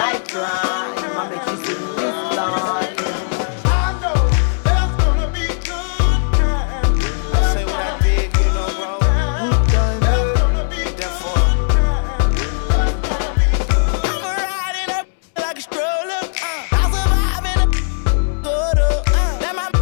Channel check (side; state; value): right; silent; digital silence